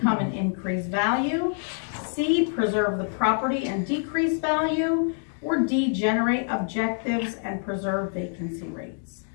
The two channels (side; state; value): right; silent; 61 dB below the other